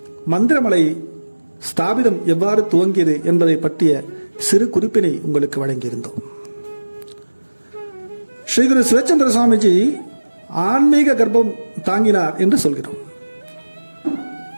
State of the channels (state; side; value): inverted; both; correlation -1.00